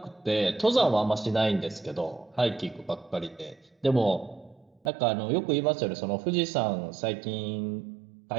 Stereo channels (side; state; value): left; drops out; at 4.9 s